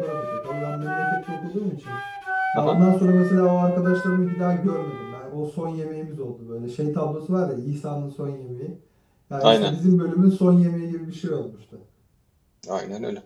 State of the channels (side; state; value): both; identical; correlation 1.00